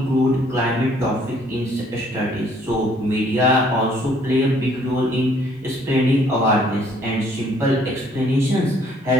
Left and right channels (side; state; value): both; normal; correlation 0.62